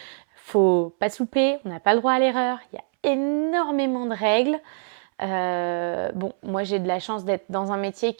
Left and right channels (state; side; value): silent; left; 63 dB below the other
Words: faut pas souper, on n'a pas le droit à l'erreur. Il y a énormément de règles. Moi j'ai de la chance d'être dans un métier